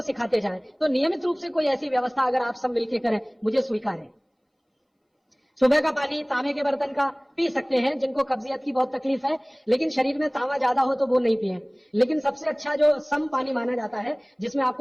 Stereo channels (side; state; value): both; identical; correlation 1.00